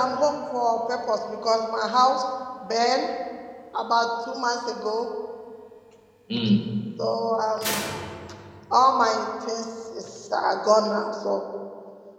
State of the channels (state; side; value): identical; both; correlation 1.00